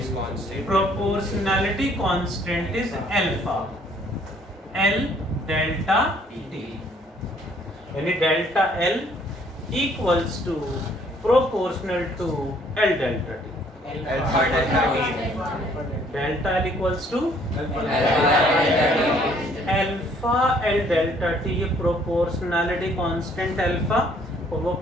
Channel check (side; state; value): both; normal; correlation 0.62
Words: is constant? Proportionality constant is alpha, L delta T। यानी delta L equals to proportional to L delta T। Alpha delta T. Delta L equals to alpha L delta T। ये proportionality constant alpha और वो